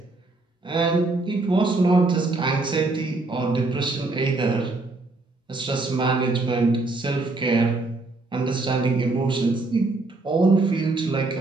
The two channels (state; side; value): quieter; left; 3.3 dB